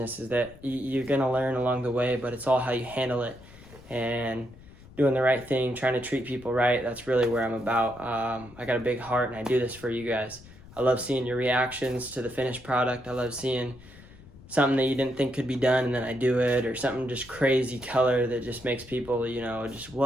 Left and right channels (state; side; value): noise; left; rumble, 21 dB below the sound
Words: is that you're gonna learn along the way, but it's all how you handle it and doing the right thing, trying to treat people right. That's really where I'm about. I got a big heart, and I do this for you guys. I love seeing your reactions to the finished product. I love seeing something that you didn't think could be done, and then I do it, or something just crazy color that just makes people, you know, just,